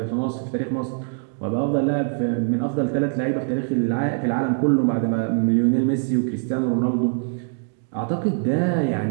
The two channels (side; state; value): left; silent; 59 dB below the other